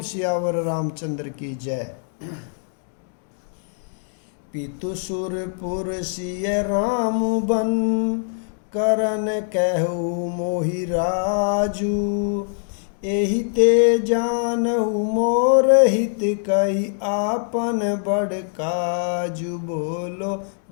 सियावर रामचंद्र की जय। पितु सुरपुर सिय राम बन, करन कहु मोहि राजू। एहि ते जानहु मोर हित, कही आपन बड़ काजू। बोलो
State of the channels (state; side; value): silent; right; digital silence